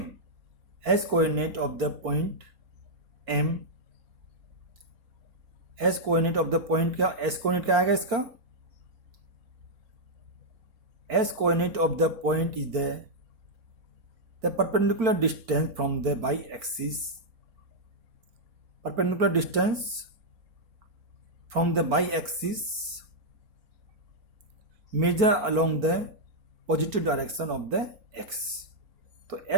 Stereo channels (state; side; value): late; left; 4.4 ms